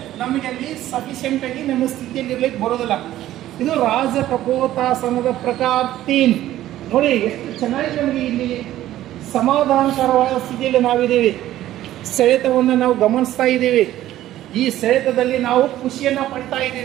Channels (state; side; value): quieter; left; 13.8 dB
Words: ನಮಗೆ ಅಲ್ಲಿ ಸಫಿಷಿಯೆಂಟ್ ಆಗಿ ನಮ್ಮ ಸ್ಥಿತಿಯಲ್ಲಿ ಇರ್ಲಿಕ್ಕೆ ಬರೋದಿಲ್ಲ. ಇದು ರಾಜಕಪೋತಾಸನದ ಪ್ರಕಾರ 3 ನೋಡಿ, ಎಷ್ಟು ಚೆನ್ನಾಗಿ ನಮಗೆ ಇಲ್ಲಿ ಸಮಾಧಾನಕರವಾದ ಸ್ಥಿತಿಯಲ್ಲಿ ನಾವಿದ್ದೀವಿ. ಸೆಳೆತವನ್ನು ನಾವು ಗಮನಿಸ್ತಾ ಇದ್ದೀವಿ. ಈ ಸೆಳೆತದಲ್ಲಿ ನಾವು ಖುಷಿಯನ್ನ ಪಡ್ತಾ